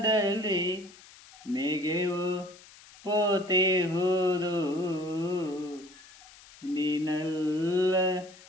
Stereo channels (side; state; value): left; noise; hiss, 22 dB below the sound